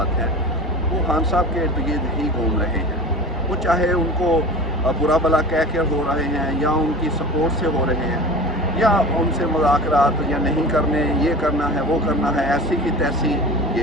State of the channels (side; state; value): both; normal; correlation 0.35